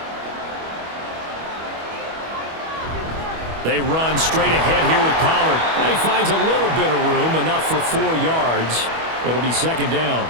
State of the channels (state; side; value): late; left; 25 ms